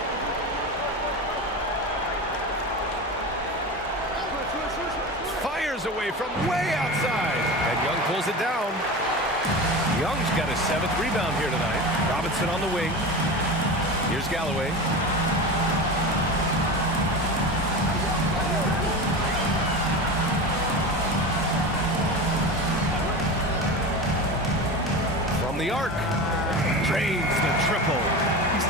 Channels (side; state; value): both; normal; correlation 0.27